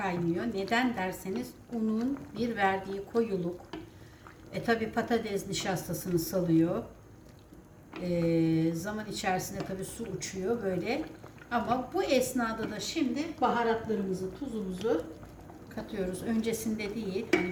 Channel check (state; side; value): identical; both; correlation 1.00